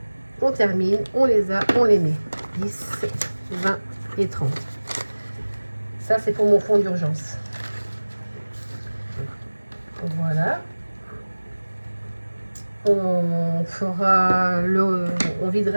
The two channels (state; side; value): inverted; both; correlation -1.00